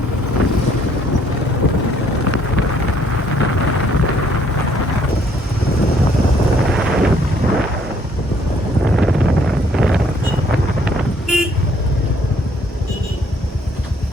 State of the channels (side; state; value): both; normal; correlation 0.64